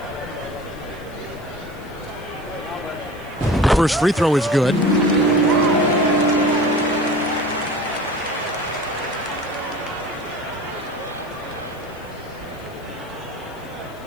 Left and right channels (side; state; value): left; noise; hiss, 26 dB below the sound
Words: First free throw is good.